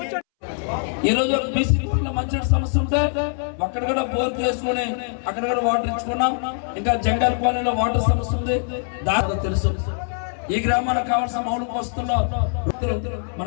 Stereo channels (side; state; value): right; silent; 64 dB below the other